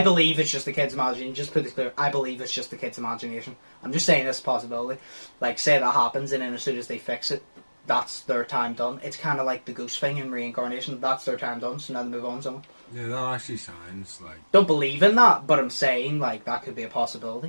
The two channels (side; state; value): both; inverted; correlation -1.00